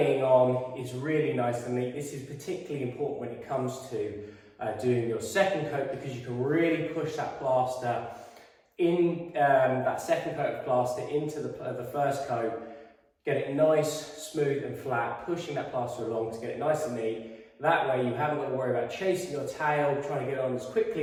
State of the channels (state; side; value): identical; both; correlation 1.00